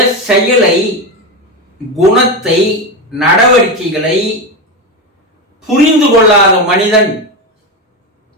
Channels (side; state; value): both; normal; correlation 0.16